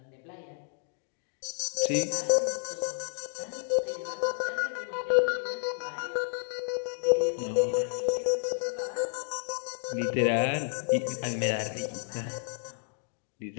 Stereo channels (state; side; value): silent; right; digital silence